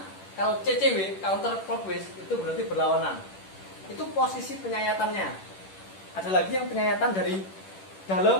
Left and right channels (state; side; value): late; right; 10 ms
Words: Kalau CCW, counter clockwise, itu berarti berlawanan. Itu posisi penyayatannya. Ada lagi yang penyayatan dari